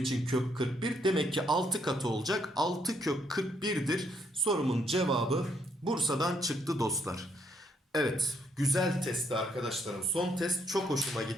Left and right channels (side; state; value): both; normal; correlation 0.72